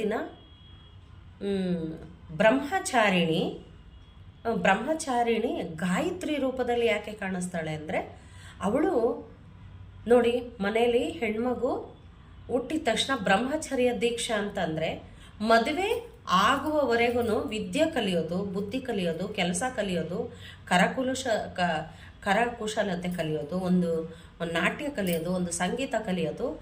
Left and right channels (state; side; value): identical; both; correlation 1.00